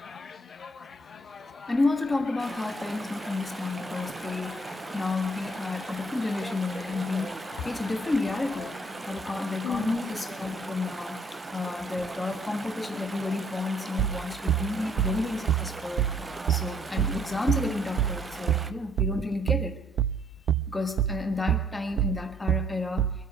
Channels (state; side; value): normal; both; correlation 0.65